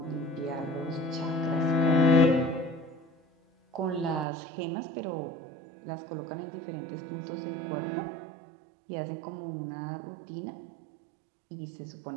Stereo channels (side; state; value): left; drops out; at 4.2 s